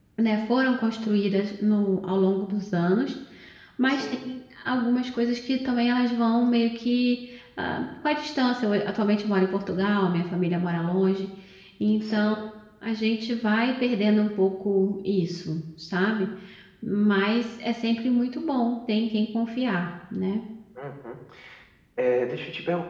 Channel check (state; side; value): identical; both; correlation 1.00